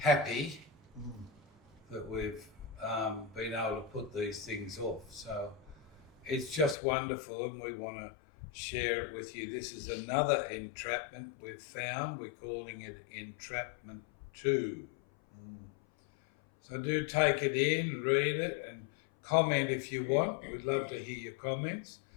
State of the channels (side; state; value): right; drops out; at 6.8 s